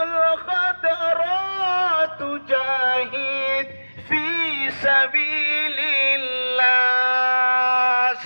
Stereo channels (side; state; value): both; inverted; correlation -1.00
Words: الخضراء تجاهد في سبيل الله.